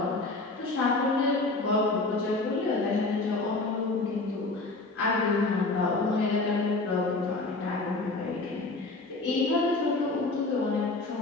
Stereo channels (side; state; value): right; quieter; 3.3 dB